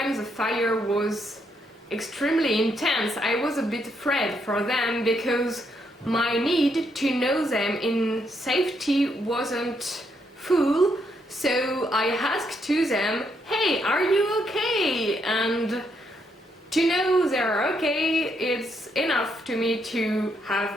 the fire was extremely intense, I was a bit afraid for them because my need to know them in safety wasn't full. So I asked to them, hey, are you okay? And to know they're okay, it's enough to me to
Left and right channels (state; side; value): normal; both; correlation 0.76